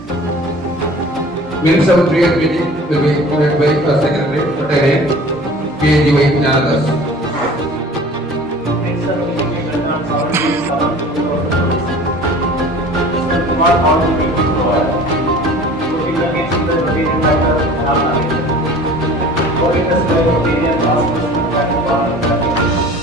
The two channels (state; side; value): normal; both; correlation 0.44